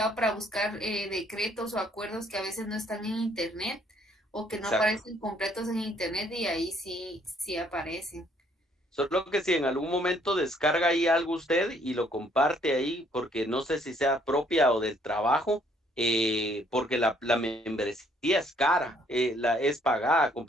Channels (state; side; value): normal; both; correlation 0.65